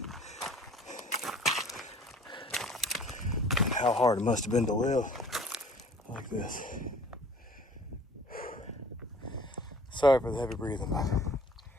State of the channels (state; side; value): normal; both; correlation 0.51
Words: and how hard it must have been to live like this. Sorry for the heavy breathing, but